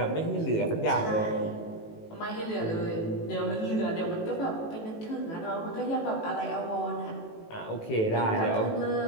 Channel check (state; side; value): late; right; 18 ms